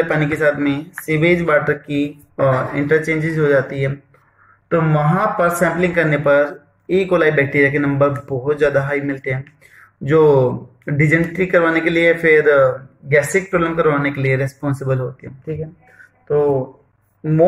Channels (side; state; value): both; identical; correlation 1.00